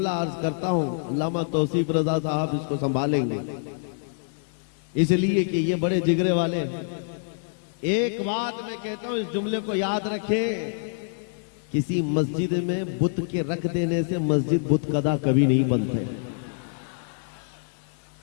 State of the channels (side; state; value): right; silent; 61 dB below the other